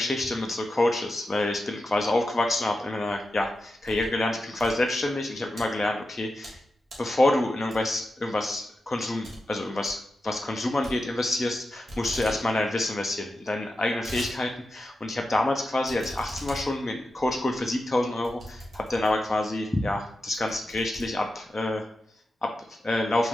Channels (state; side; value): normal; both; correlation 0.90